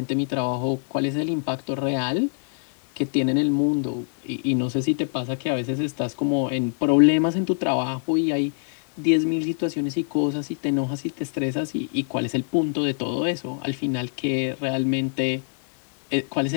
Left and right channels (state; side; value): silent; right; 62 dB below the other